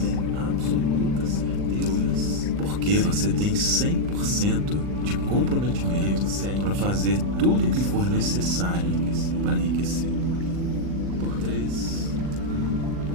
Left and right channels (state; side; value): late; left; 40 ms